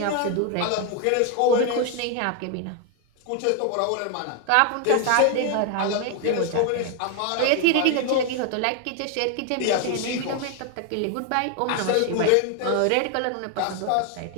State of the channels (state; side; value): different; both; correlation 0.00